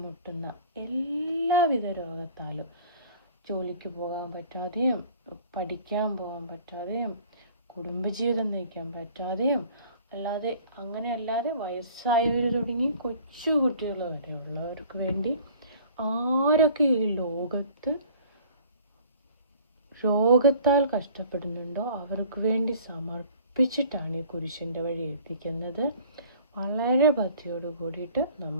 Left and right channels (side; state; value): both; inverted; correlation -0.49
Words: എല്ലാവിധ രോഗത്താലും, ജോലിക്ക് പോകാൻ പറ്റാതെയും, പഠിക്കാൻ പോകാൻ പറ്റാതെയും, കുടുംബജീവിതം നയിക്കാൻ പറ്റാതെയും, അല്ലാതെ വയസ്സായവർ തുടങ്ങി കൊച്ചു കുട്ടികൾ വരെ ഉള്ളവർക്ക് വേണ്ടി ആരൊക്കെ ഈ ലോകത്ത് രോഗത്താൽ കഷ്ടപ്പെടുന്നുണ്ടോ അവർക്ക് വേണ്ടി സമർപ്പിച്ചിട്ടാണ് ഈ കുരിശിൻ്റെ വഴി എത്തിക്കുന്നത്. വളരെ ഭക്തിയോട് കൂടിയിട്ട്